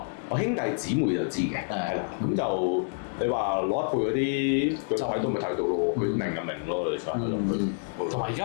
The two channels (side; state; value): right; silent; 59 dB below the other